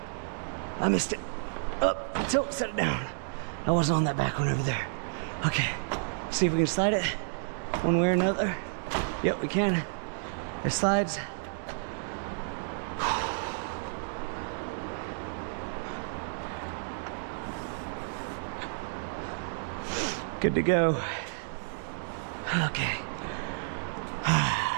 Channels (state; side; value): silent; left; digital silence